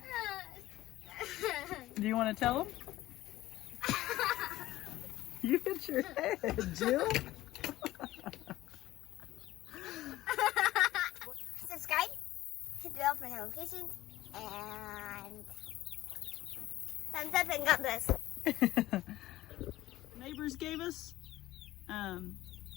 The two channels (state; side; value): quieter; right; 15.9 dB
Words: Do you want to tell them? You hit your head, Jill. Subscribe, hit the bell for notifications, and thumbs up and God bless. Neighbors gave us.